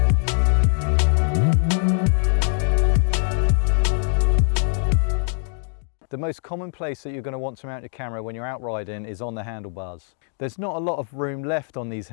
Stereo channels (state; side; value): silent; right; digital silence